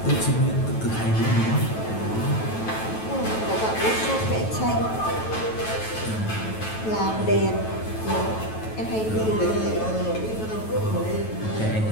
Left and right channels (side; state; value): right; late; 9.2 ms